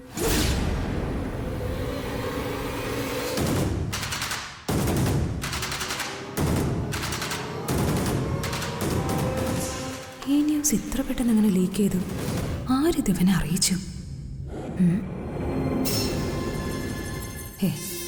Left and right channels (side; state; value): both; identical; correlation 1.00